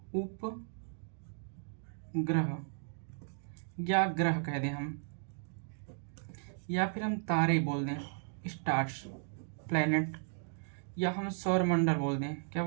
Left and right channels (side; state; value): left; silent; 54 dB below the other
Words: उपग्रह या ग्रह कह दें हम, या फिर हम तारे बोल दें, स्टार्स, प्लैनेट, या हम सौर मंडल बोल दें, क्या